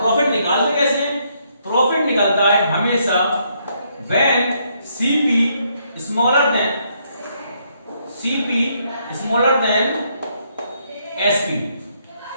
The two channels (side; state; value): both; inverted; correlation -0.73